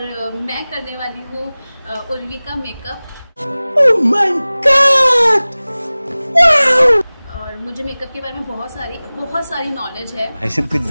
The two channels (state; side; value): inverted; both; correlation -0.99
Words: मैं करने वाली हूँ उर्वी का makeup. Oh my God! Wow! और मुझे मेकअप के बारे में बहुत सारी नॉलेज है। ऐसे कुछ